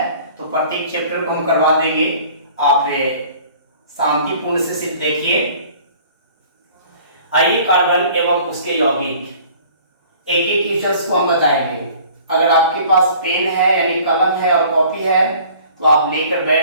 तो प्रत्येक चैप्टर को हम करवा देंगे। आप शांतिपूर्ण से सिर्फ देखिए। आइए, कार्बन एवं उसके यौगिक एक एक क्वेश्चंस को हम बताएंगे। अगर आपके पास पेन है यानी कलम है और कॉपी है तो आप लेकर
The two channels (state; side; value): inverted; both; correlation -0.50